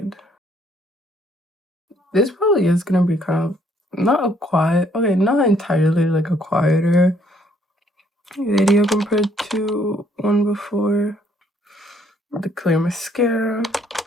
This probably is gonna be kind of not a quiet, okay, not entirely like a quieter video compared to one before. The clear mascara.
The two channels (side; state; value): both; normal; correlation 0.66